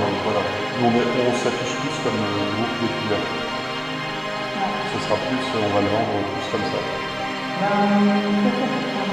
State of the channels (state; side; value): identical; both; correlation 1.00